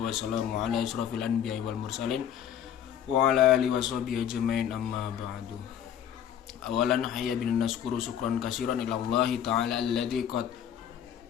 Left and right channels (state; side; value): quieter; right; 9.5 dB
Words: wassalamu ala asrofil anbiya'i wal mursalin wa ala alihi washabihi ajmain, amma ba'du. Awalan hayya bin naskuru syukran katsiran ila Allah ta'ala alladzi qad